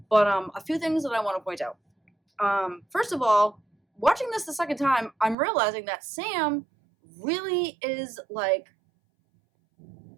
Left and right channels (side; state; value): left; drops out; at 5.4 s